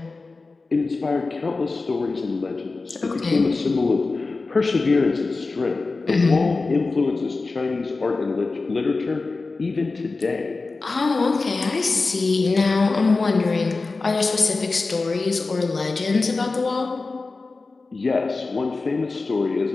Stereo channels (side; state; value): right; quieter; 3.8 dB